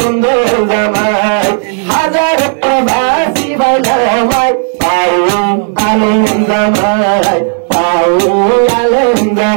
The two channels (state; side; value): silent; left; 59 dB below the other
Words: জামাই হাজার প্রবাসী বানামাই পাইয়ে আনন্দময় পাইয়ে